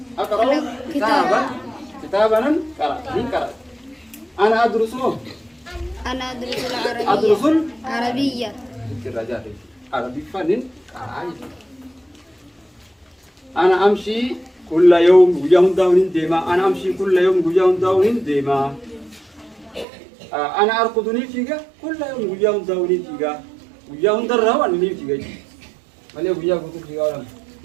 أقرأ كتابا كتابنا قرأ أنا أدرس أنا أدرس العربية. أدرس عربية. الرجال عربي فنن عايز أنا أمشي كل يوم ويوم داون ديما أنا أمشي كل يوم ويوم داون ديما أنا أرقدني فيها كل يوم ويوم داون فيها ويوم درا وأني فيها ملء ويا قلت فيها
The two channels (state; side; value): drops out; left; at 19.9 s